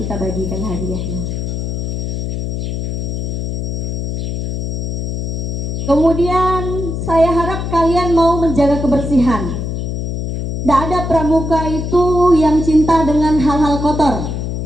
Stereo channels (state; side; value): noise; left; hum, 3 dB below the sound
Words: bagikan hadiahnya. Kemudian saya harap kalian mau menjaga kebersihan. Tidak ada pramuka itu yang cinta dengan hal-hal kotor.